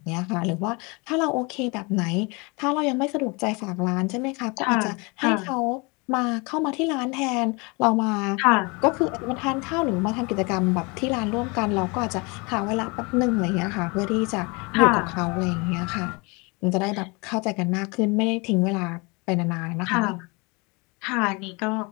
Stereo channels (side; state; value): right; quieter; 28.6 dB